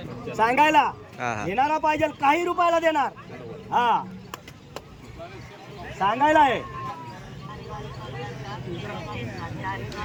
सांगायला. घेणारा पाहिजे, काही रुपयाला देणार. हा, सांगायला आहे.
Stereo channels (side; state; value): both; identical; correlation 1.00